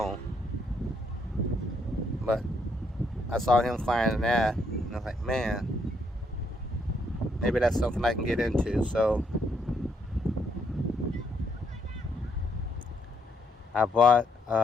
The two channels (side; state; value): both; normal; correlation 0.73